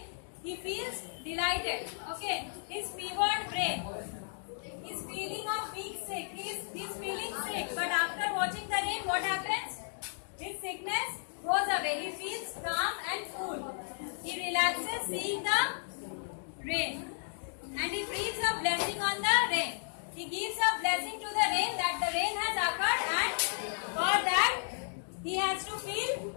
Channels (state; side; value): silent; right; digital silence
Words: he feels delighted. Okay, his fevered brain, his feeling of being sick, he's feeling sick. But after watching the rain, what happens? His sickness goes away. He feels calm and cool. He relaxes seeing the rain, and he breathes a blessing on the rain. He gives a blessing to the rain that the rain has occurred, and for that he has to feel